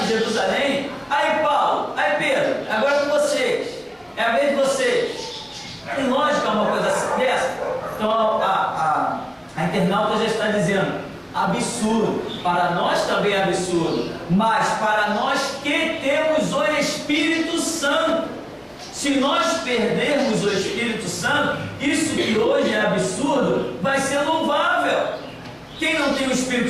Jerusalém. Aí Paulo, aí Pedro, agora é com vocês. É a vez de vocês. Tem lógica uma coisa dessa? Então a internauta já está dizendo: absurdo. Para nós também é absurdo. mas para nós que temos o Espírito Santo. Se nós perdermos o Espírito Santo, isso que hoje é absurdo, vai ser louvável. Quem não tem o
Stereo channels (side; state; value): both; identical; correlation 1.00